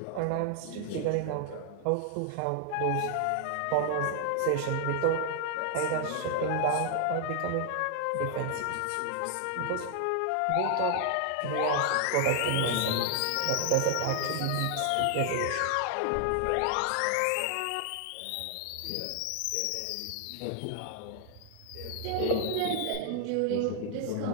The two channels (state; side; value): different; both; correlation 0.00